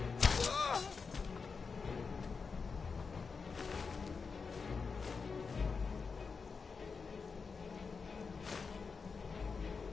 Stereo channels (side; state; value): right; quieter; 5.0 dB